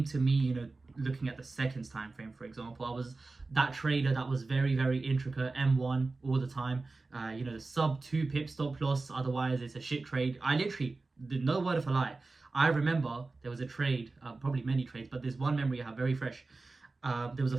to me, looking at the seconds time frame, for example. I was that trader that was very, very intricate, M1 all the time. The sub 2 pip stop loss, otherwise it's a shit trade. I literally, no word of a lie, I remember there was a trade, probably many trades, but there's one memory I have very fresh. There was a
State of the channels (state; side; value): quieter; left; 3.6 dB